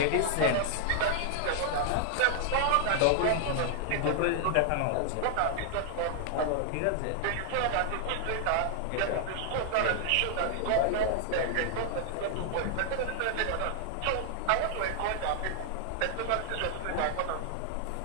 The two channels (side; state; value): both; different; correlation 0.00